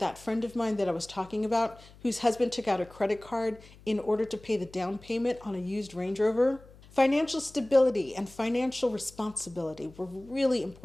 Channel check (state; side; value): noise; left; hum, 23 dB below the sound